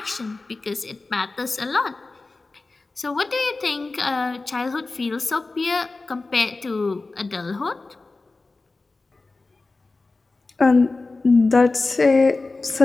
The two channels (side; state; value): right; quieter; 3.5 dB